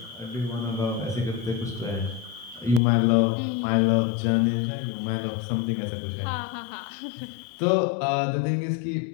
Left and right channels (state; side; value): drops out; right; at 2.8 s